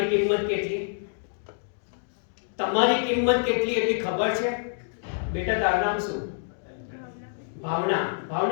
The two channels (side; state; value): right; silent; digital silence